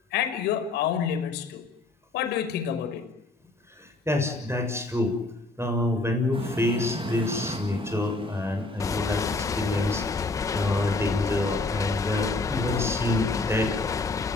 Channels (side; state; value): right; quieter; 3.2 dB